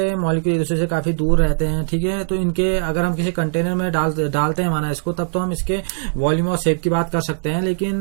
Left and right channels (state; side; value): silent; left; digital silence